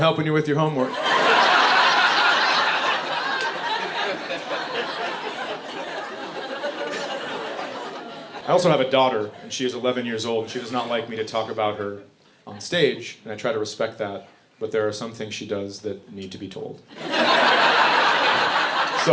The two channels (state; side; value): identical; both; correlation 1.00